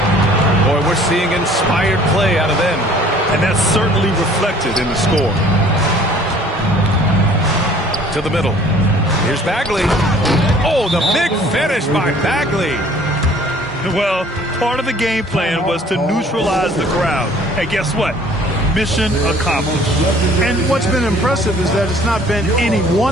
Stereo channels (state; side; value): normal; both; correlation 0.54